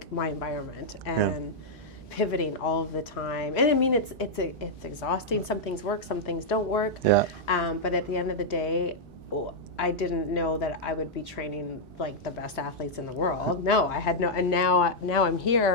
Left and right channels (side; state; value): both; normal; correlation -0.05